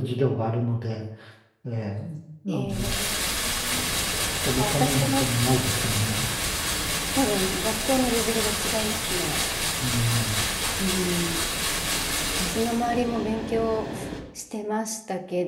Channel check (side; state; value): both; identical; correlation 1.00